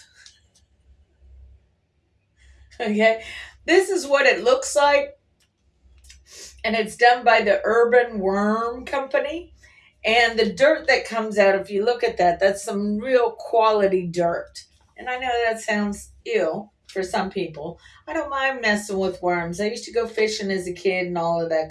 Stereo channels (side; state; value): both; identical; correlation 1.00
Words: Okay, this is what it looks like, and it's done by the Urban Worm Company. And the dirt that comes out, if you look at that, that's some real quality dirt. And I know that sounds ill for some people. I don't mind messing with worms. I used to go fishing as a kid and all of